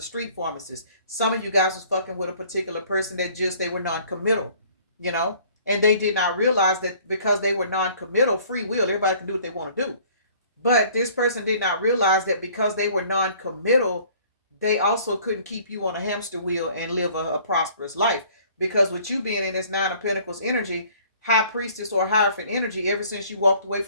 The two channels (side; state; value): both; inverted; correlation -0.55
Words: street pharmacist. Some of you guys was fucking with a particular person that just, they were non-committal, you know? And they did not realize that because they were non-committal, free will, everybody can do what they want to do. But this person did not realize that because they were non-committal, they also couldn't keep you on a hamster wheel and live a prosperous life. Because with you being in this Nine of Pentacles energy, High Priestess or Hierophant energy, ever since you walked away